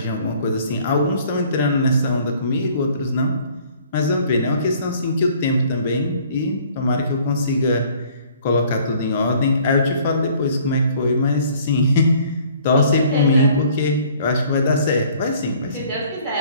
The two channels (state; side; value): inverted; both; correlation -0.56